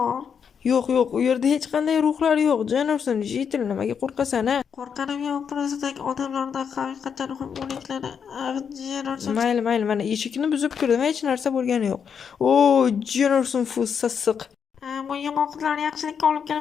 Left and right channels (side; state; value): right; quieter; 7.0 dB